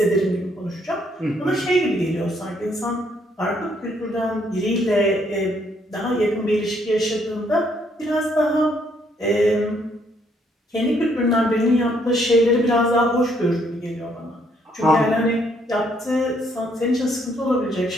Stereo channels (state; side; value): normal; both; correlation 0.69